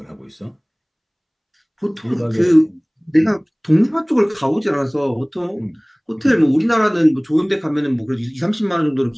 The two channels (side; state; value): both; identical; correlation 1.00